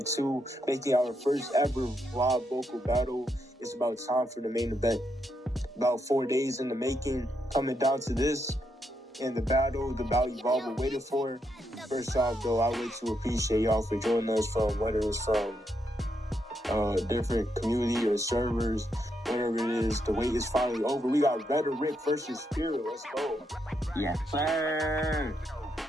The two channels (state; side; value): normal; both; correlation 0.80